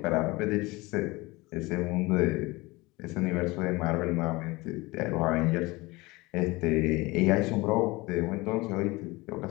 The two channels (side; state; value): right; quieter; 22.6 dB